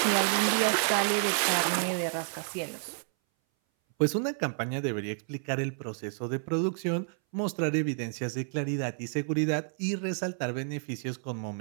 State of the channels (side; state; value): left; silent; 58 dB below the other